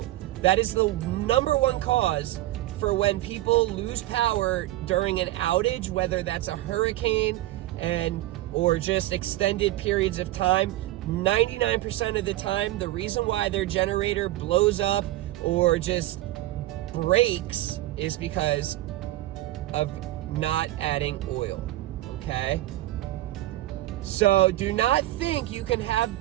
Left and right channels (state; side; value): quieter; left; 16.3 dB